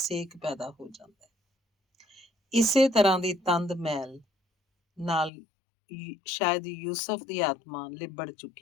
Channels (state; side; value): drops out; right; at 5.3 s